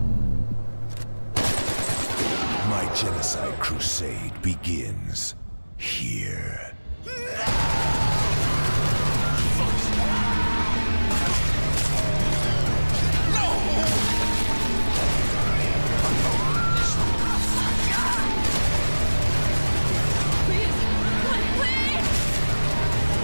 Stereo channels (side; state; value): both; inverted; correlation -1.00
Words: My genocide crusade begins here.